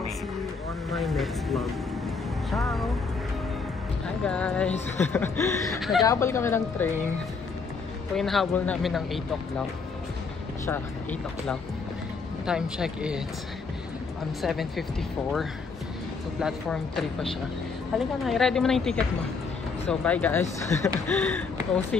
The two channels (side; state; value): right; quieter; 4.8 dB